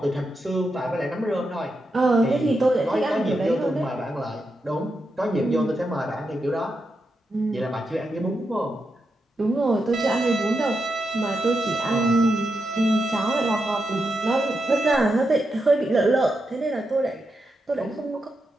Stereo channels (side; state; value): both; normal; correlation 0.86